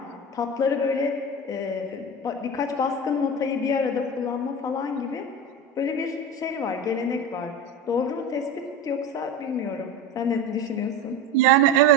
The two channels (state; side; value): normal; both; correlation 0.26